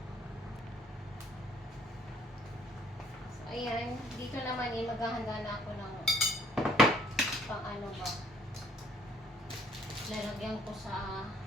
So, ayan. Dito naman maghahanda na ako ng pang ano ba. Lalagyan ko sa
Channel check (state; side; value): normal; both; correlation 0.61